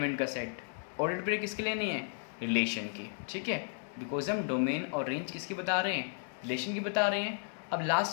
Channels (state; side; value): silent; right; digital silence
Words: का सेट। ऑर्डर्ड पेयर किसके लिए नहीं है, रिलेशन की, ठीक है। बिकॉज हम डोमेन और रेंज किसकी बता रहे हैं, रिलेशन की बता रहे हैं। अब